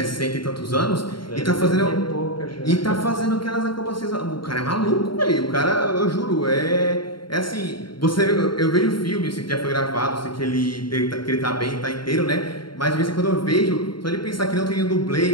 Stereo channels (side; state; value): right; late; 0.73 ms